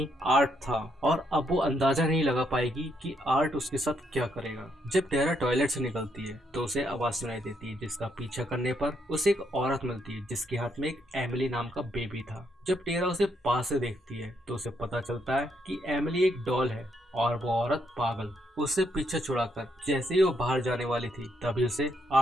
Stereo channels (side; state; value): both; normal; correlation 0.75